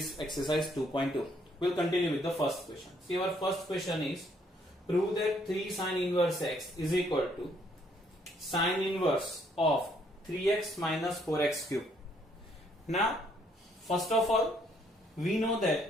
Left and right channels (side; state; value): both; normal; correlation 0.68